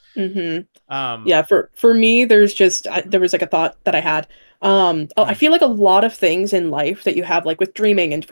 Mm-hmm. um Yeah, for me, there's just there was like a thought that I had. I mm, feel like a lot of things in life that you have like with dreaming and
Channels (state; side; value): inverted; both; correlation -1.00